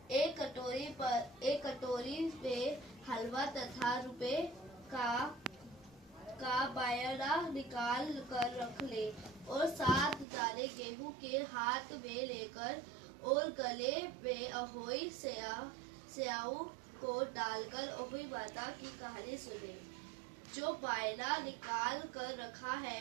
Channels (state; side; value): drops out; left; at 10.2 s